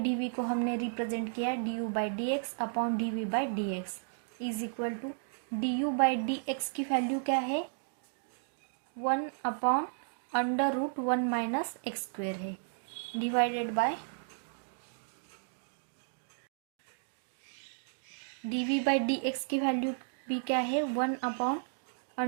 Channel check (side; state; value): left; silent; digital silence